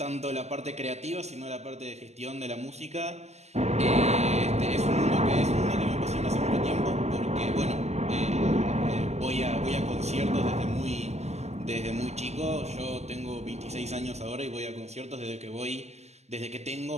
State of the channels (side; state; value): left; late; 0.32 ms